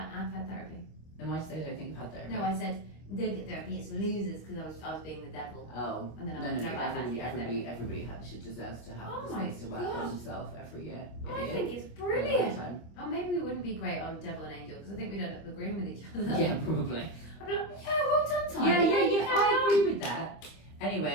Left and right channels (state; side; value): late; right; 25 ms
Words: therapy. Then why say I don't think you've had therapy? No, I said, don't get therapy, it's for losers, because I was being the devil. Oh. And then I No, went, no, no, no. I've actually had therapy. Everybody should deserves to have Oh the my space to work gosh. on himself every year. Every I year. think it's For a long brilliant. time. Oh, maybe we wouldn't be great on Devil and Angel, because I think we'd end up agreeing with each other. Yeah, probably. I'd be like, yeah, well done, Tyler. Yeah, you I carry on. agree with that.